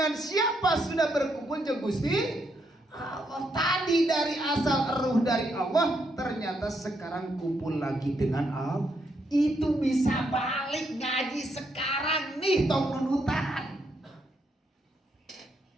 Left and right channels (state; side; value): normal; both; correlation 0.77